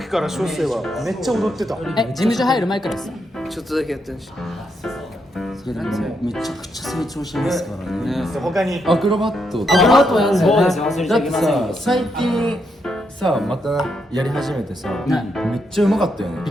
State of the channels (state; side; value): normal; both; correlation 0.79